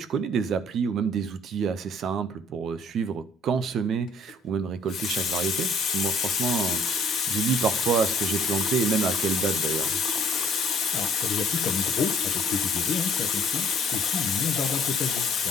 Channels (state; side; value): normal; both; correlation 0.59